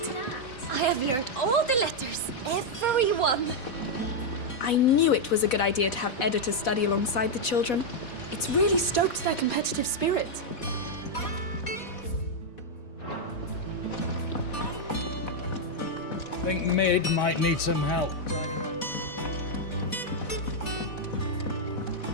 I have learned all the letters, every one. I knew it was a good idea to have editors study alongside the children. It's really stoked their competitive spirit. Think Mid might need some help.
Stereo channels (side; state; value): right; late; 4.1 ms